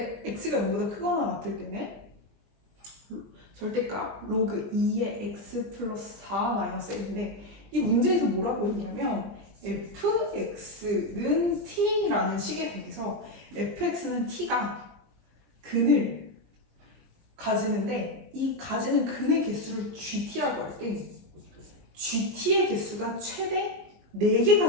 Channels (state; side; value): late; left; 20 ms